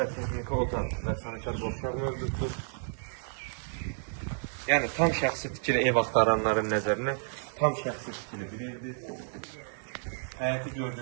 texniki otaq və sanitar boşluq mövcuddur. Yəni tam şəxsi tikili ev axtaranların nəzərinə tam şəxsi tikili bir evdir. Həyəti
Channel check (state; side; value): silent; left; 57 dB below the other